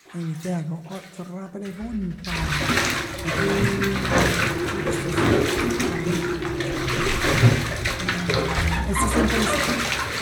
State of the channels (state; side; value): identical; both; correlation 1.00